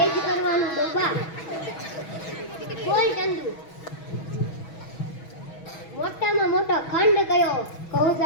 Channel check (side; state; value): right; late; 6.2 ms